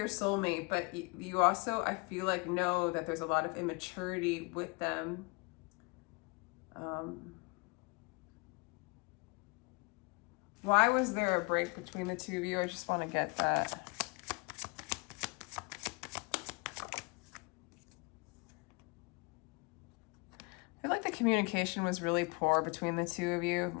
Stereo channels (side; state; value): right; quieter; 30.1 dB